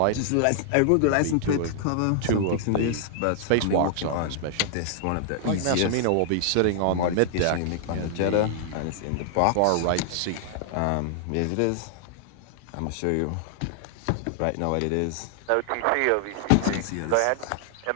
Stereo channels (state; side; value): different; both; correlation -0.01